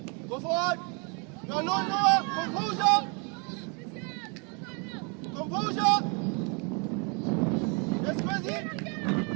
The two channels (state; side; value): quieter; left; 34.5 dB